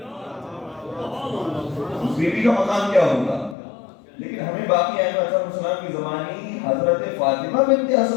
اس بیوی کا مقام کیا ہوگا. لیکن ہمیں باقی ائمہ اعظم السلام کی زمانی حضرت فاطمہ بنت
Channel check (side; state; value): right; drops out; at 3.6 s